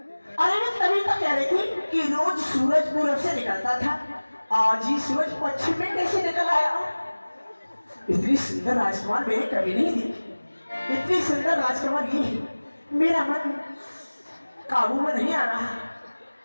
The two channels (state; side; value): inverted; both; correlation -1.00